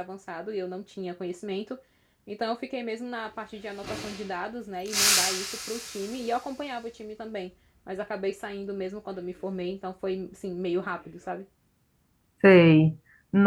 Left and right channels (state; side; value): identical; both; correlation 1.00